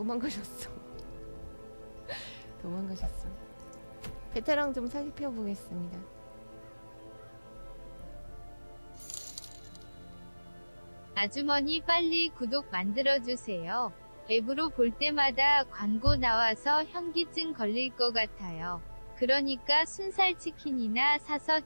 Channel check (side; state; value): both; inverted; correlation -1.00